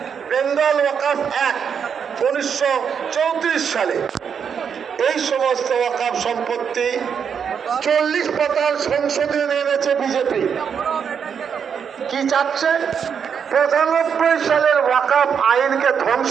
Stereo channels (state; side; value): quieter; left; 7.1 dB